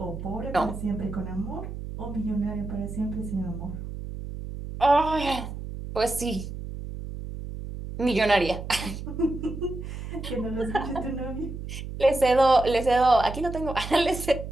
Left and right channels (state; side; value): noise; right; hum, 8 dB below the sound